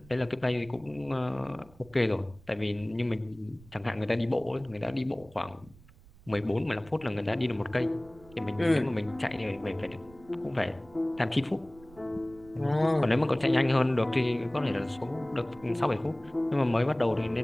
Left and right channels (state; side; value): noise; right; rumble, 24 dB below the sound